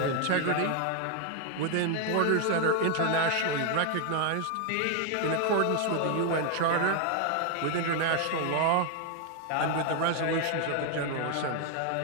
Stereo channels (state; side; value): different; both; correlation 0.01